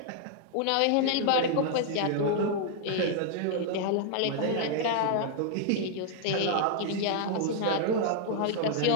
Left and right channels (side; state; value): both; different; correlation 0.00